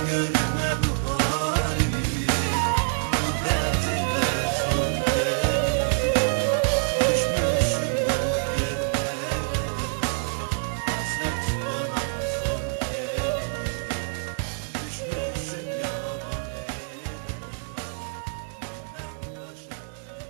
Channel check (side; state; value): left; silent; 61 dB below the other